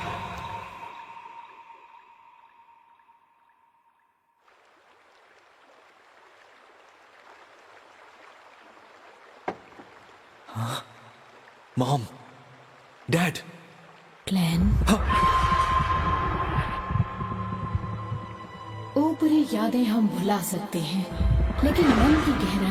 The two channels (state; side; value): identical; both; correlation 1.00